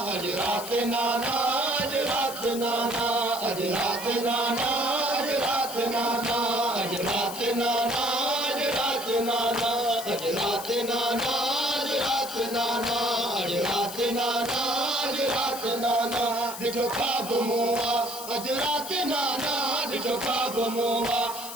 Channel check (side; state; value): left; noise; hiss, 10 dB below the sound